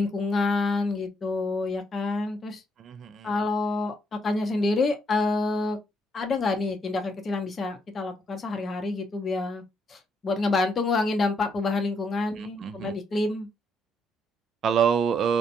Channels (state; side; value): normal; both; correlation 0.74